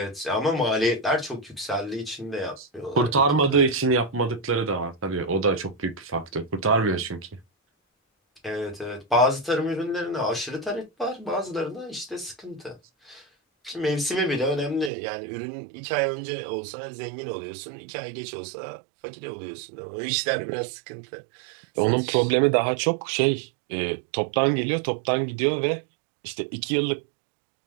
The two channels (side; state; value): left; drops out; at 14.9 s